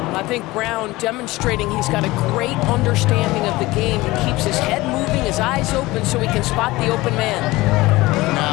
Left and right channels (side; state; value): right; quieter; 19.9 dB